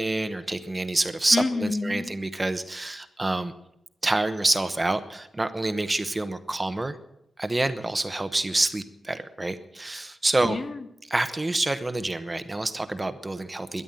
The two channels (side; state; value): both; normal; correlation 0.98